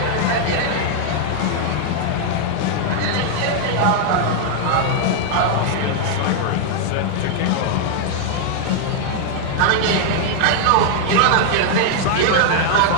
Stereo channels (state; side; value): different; both; correlation 0.00